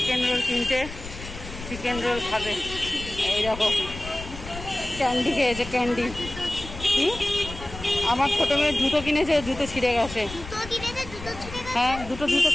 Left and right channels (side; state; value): left; noise; rumble, 12 dB below the sound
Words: রোল কিনতে, চিকেন রোল খাবে। এই দেখো ক্যান্ডি খেয়েছে, ক্যান্ডি। আমার ছোট মেয়ের জুতো কিনেছে, জুতো ছিঁড়ে গেছে। হ্যাঁ দুটো জুতো